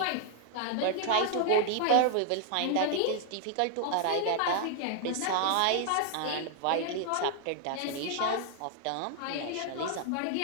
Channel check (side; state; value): both; different; correlation 0.00